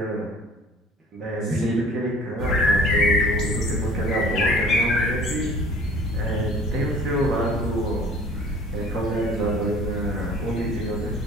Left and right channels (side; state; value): both; normal; correlation 0.49